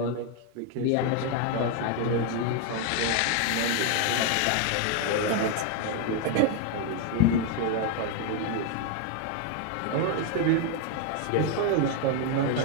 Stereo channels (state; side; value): different; both; correlation 0.00